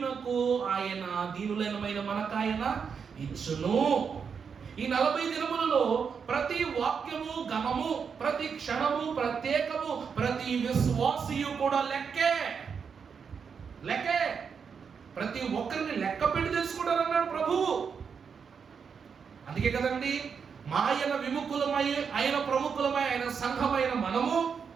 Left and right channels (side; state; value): left; quieter; 6.3 dB